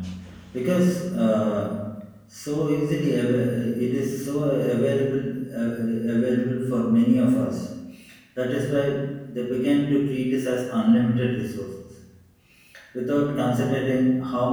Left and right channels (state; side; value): identical; both; correlation 1.00